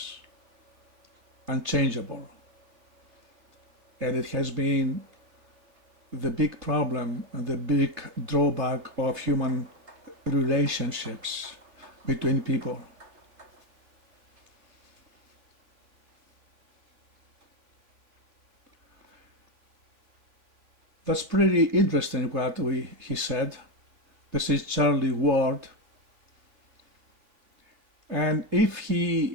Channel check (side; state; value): left; late; 3.2 ms